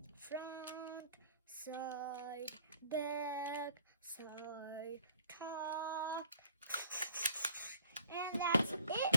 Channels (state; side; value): inverted; both; correlation -0.54